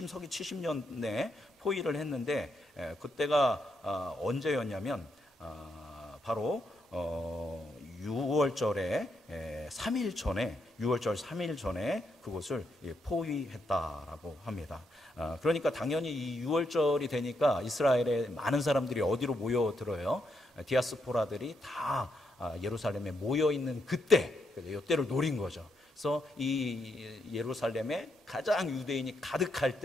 70년에 포위를 했는데 그때가 언제였냐면 바로 6월절에 3일 전에 6월절 3일 전에 그곳을 포위했다라고 합니다. 그러니까 당연히 이 6월절이 되니까 이스라엘의 많은 사람들이 어디로 모여들어요? 디아스포라들이 다 예루살렘에 모여 있는 그때, 이때를 노린 거죠. 그래서 이 예루살렘에 가장 유대인이 가득할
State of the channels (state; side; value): normal; both; correlation 0.79